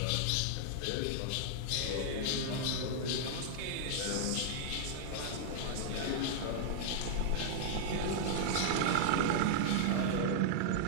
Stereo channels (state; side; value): different; both; correlation -0.01